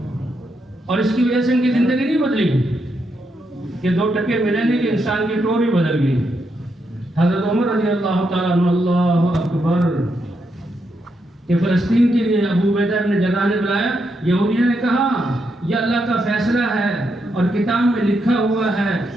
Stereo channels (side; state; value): both; normal; correlation 0.81